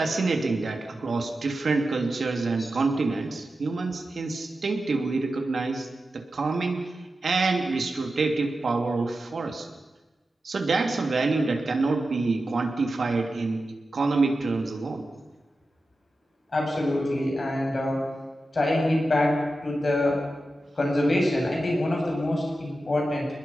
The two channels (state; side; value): normal; both; correlation 0.92